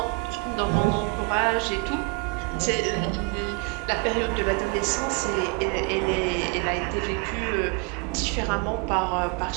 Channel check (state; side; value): quieter; left; 27.2 dB